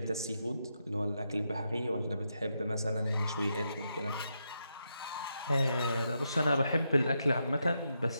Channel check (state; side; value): inverted; both; correlation -0.83